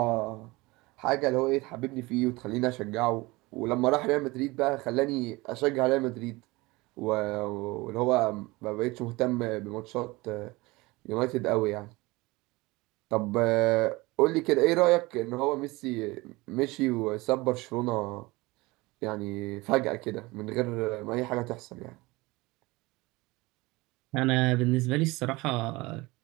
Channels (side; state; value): left; quieter; 22.3 dB